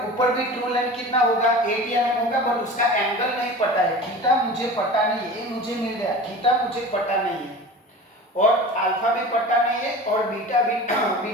भी ट्रू लेंथ कितना होगा, 80 mm होगा, बट उसका एंगल नहीं पता है, थीटा मुझे पता नहीं है, ये मुझे मिल गया, थीटा मुझे पता नहीं है, और अल्फा भी पता नहीं है, और बीटा भी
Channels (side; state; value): both; normal; correlation 0.36